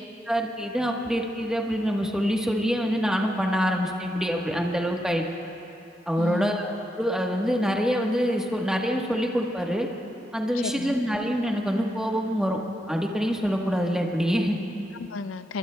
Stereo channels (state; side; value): normal; both; correlation 0.83